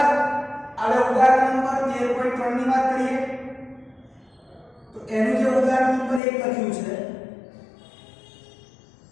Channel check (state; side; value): drops out; right; at 6.2 s